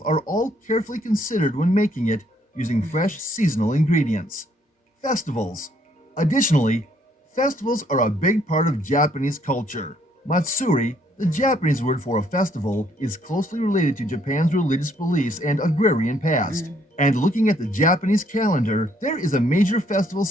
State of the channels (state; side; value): normal; both; correlation 0.67